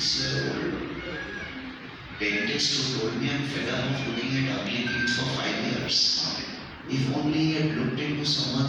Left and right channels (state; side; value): identical; both; correlation 1.00